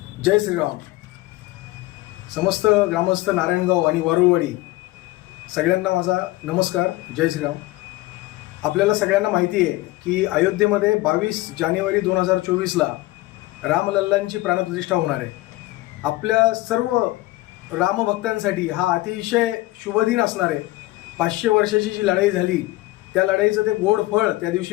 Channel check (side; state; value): right; quieter; 18.9 dB